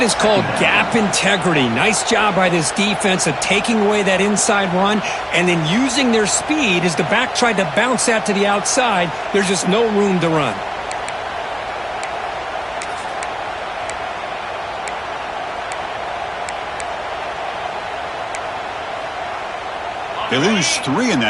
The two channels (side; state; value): both; identical; correlation 1.00